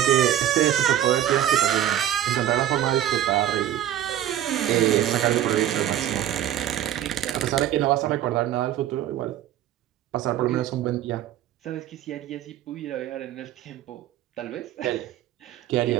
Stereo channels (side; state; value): left; quieter; 11.7 dB